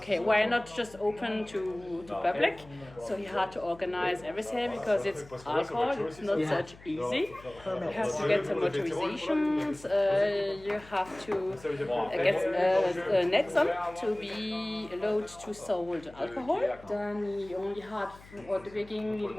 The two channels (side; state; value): left; noise; hum, 21 dB below the sound